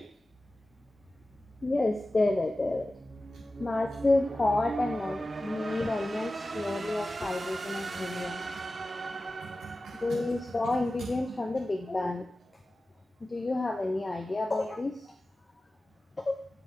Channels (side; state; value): both; normal; correlation 0.95